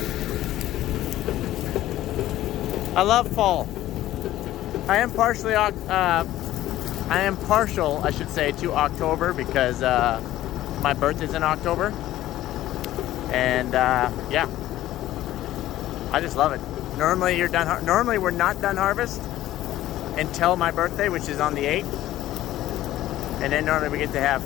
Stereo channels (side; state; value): right; quieter; 14.4 dB